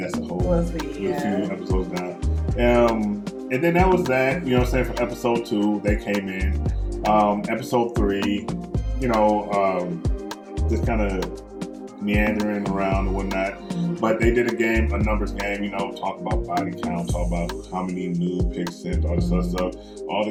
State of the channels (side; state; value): both; identical; correlation 1.00